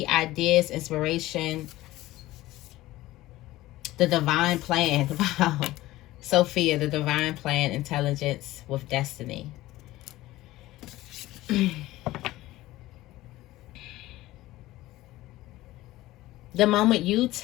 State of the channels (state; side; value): quieter; right; 17.0 dB